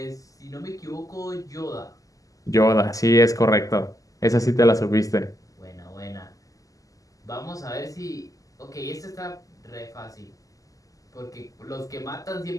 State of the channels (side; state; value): right; late; 0.17 ms